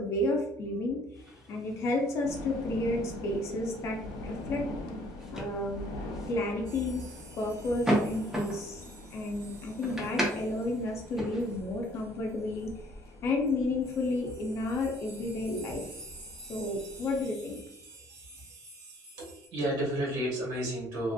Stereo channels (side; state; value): both; normal; correlation 0.60